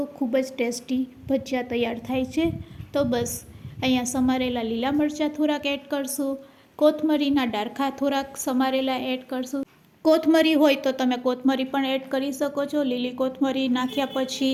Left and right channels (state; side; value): identical; both; correlation 1.00